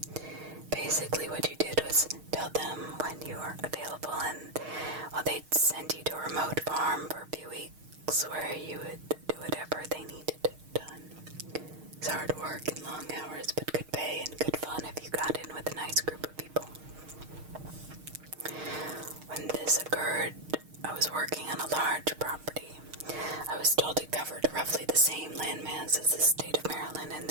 Basically, what you did was tell them when you were available, and they'd send you to a remote farm for a few weeks where you would do whatever they needed done. It's hard work and long hours, but good pay and good fun if you got in with a nice group of people. When this occurred, I was working on a large property. I was told it covered roughly the same landmass as the state of Maryland in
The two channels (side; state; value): left; late; 6.5 ms